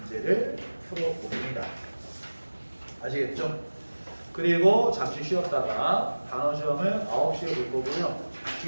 풀어봅니다. 아시겠죠? 그리고 잠시 쉬었다가 단어 시험을 9시에 볼 거고요.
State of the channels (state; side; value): inverted; both; correlation -1.00